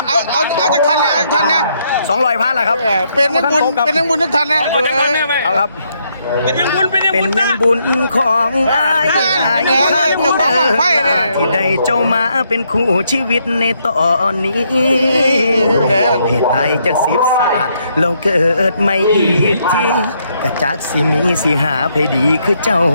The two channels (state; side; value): inverted; both; correlation -0.75